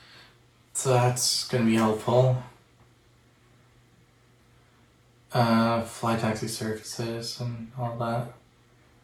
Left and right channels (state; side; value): identical; both; correlation 1.00